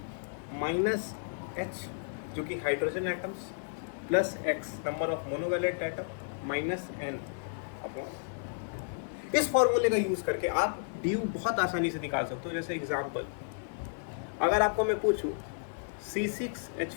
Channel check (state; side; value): silent; right; digital silence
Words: - H जो कि hydrogen atoms plus X number of monovalent atom minus N upon. इस फॉर्मूले का यूज करके आप ड्यू बहुत आसानी से निकाल सकते हो। जैसे एग्जांपल, अगर आपको मैं पूछूं